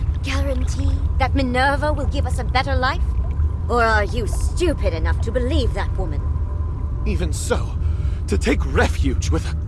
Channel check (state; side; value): identical; both; correlation 1.00